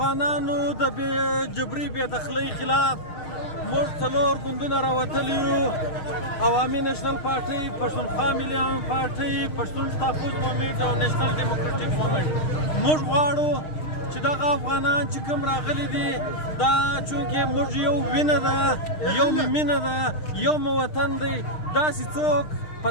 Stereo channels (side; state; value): right; late; 6.5 ms